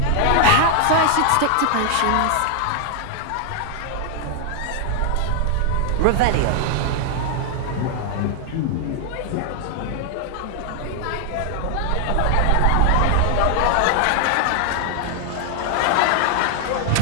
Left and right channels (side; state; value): both; different; correlation 0.00